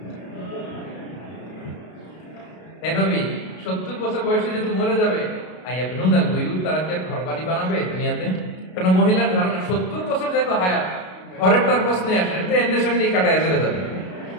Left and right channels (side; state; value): right; late; 33 ms